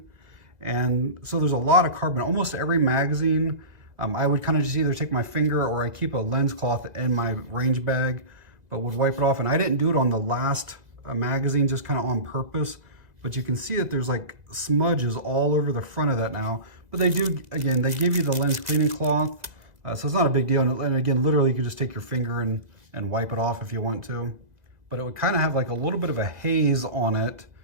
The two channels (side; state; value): left; late; 1.9 ms